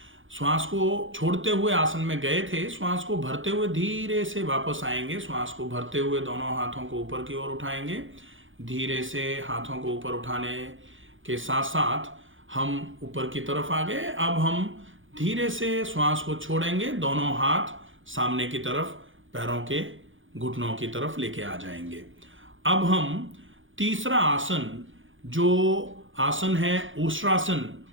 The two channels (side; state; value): left; late; 0.57 ms